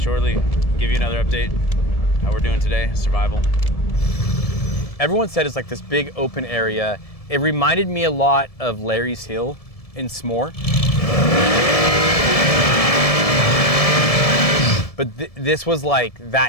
Give you another update. How we're doing today, survival. Everyone said it's like this big open area. It reminded me a lot of Larry's Hill in S'more. But this was like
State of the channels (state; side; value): late; right; 1.7 ms